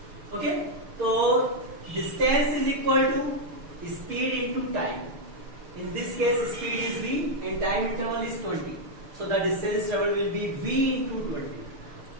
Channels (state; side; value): late; left; 6.6 ms